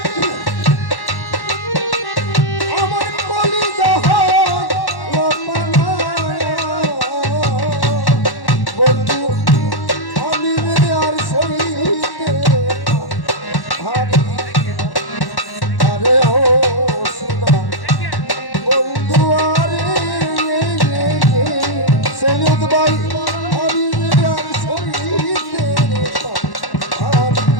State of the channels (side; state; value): right; late; 1.1 ms